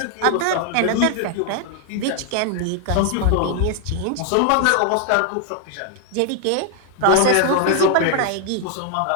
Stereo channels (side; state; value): both; different; correlation 0.00